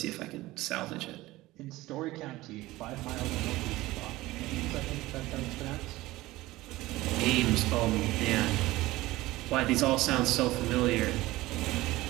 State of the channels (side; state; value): left; quieter; 18.4 dB